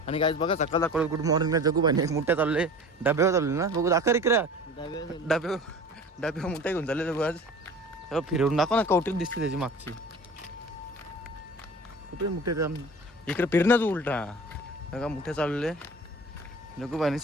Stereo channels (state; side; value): normal; both; correlation 0.39